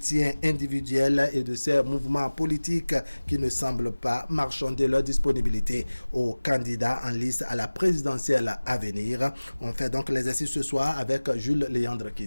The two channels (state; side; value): inverted; both; correlation -1.00